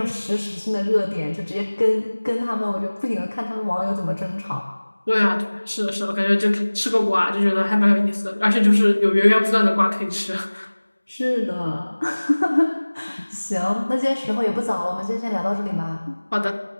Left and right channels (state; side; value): inverted; both; correlation -1.00